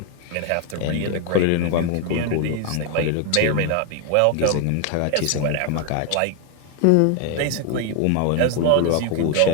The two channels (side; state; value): both; different; correlation 0.01